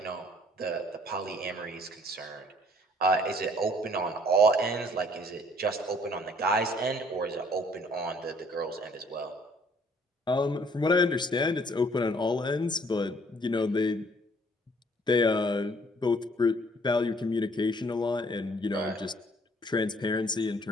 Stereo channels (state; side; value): normal; both; correlation 0.60